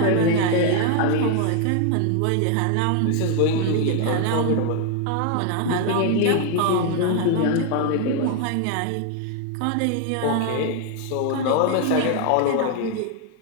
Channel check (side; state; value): both; different; correlation 0.00